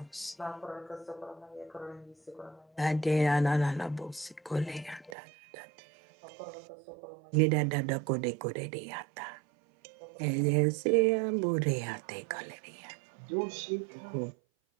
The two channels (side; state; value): left; drops out; at 5.2 s